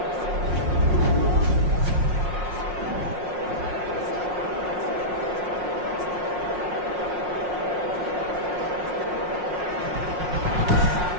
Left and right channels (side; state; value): left; late; 5.6 ms